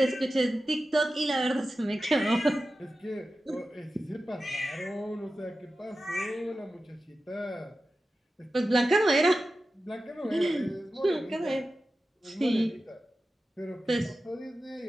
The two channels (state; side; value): normal; both; correlation 0.94